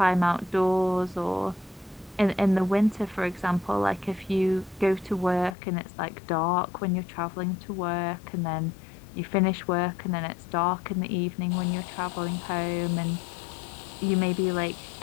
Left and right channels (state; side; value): drops out; right; at 5.6 s